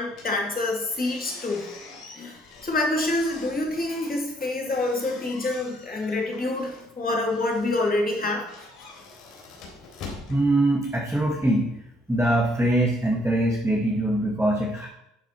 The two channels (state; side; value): normal; both; correlation 0.69